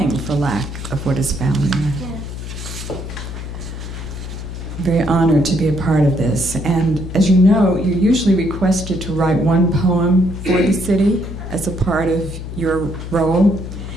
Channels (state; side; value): noise; left; hum, 8 dB below the sound